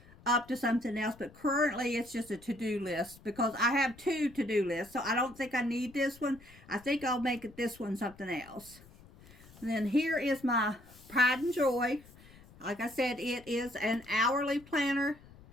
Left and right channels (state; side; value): noise; left; rumble, 23 dB below the sound